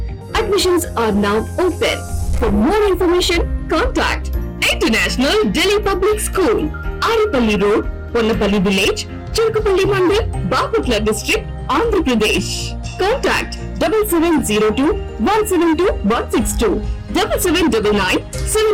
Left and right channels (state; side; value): identical; both; correlation 1.00